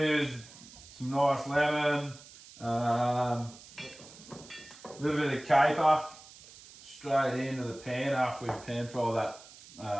use some nice lemon, a little bit of caper straight into the pan after we pan fry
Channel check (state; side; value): noise; right; hiss, 20 dB below the sound